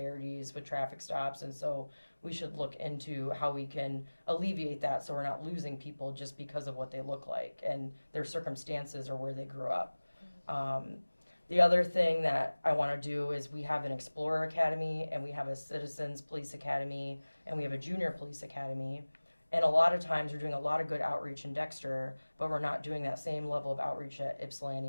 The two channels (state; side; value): inverted; both; correlation -1.00